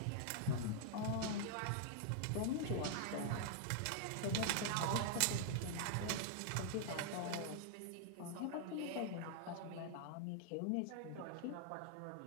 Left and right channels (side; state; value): both; different; correlation -0.01